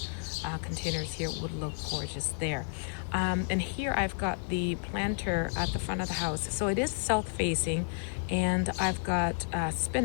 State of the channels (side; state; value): right; silent; digital silence